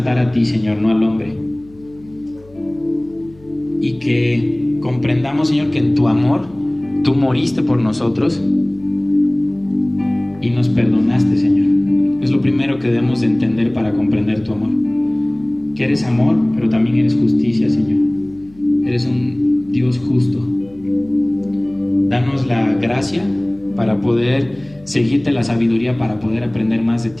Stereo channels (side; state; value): left; noise; hum, 26 dB below the sound